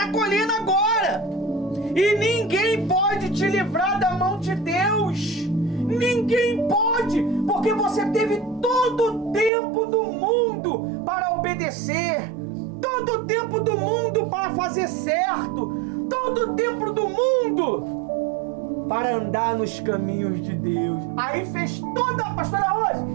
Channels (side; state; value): left; drops out; at 9.5 s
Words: colhendo agora. E ninguém pode te livrar da mão de Deus. Ninguém pode. Porque você teve todo o tempo do mundo para obedecer. Todo o tempo do mundo para fazer certo. Todo o tempo do mundo para andar nos caminhos de Deus. Aí fez toda, pastora Rose,